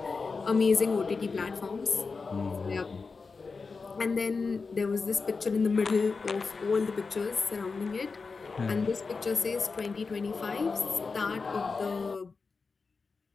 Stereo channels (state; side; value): quieter; right; 4.5 dB